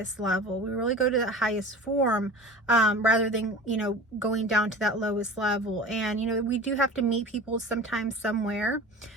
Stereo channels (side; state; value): both; normal; correlation 0.36